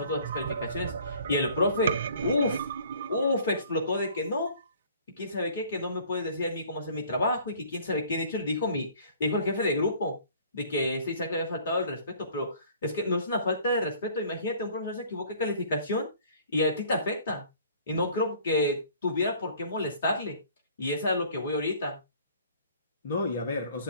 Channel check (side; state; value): both; inverted; correlation -0.53